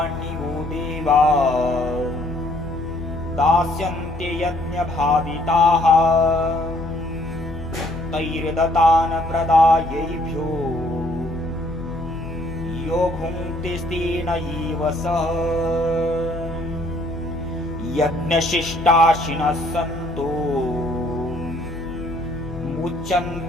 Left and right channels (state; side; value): noise; left; hum, 13 dB below the sound